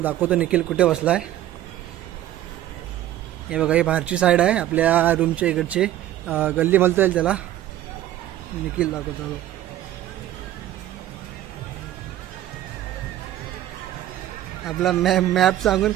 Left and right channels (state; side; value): quieter; left; 13.1 dB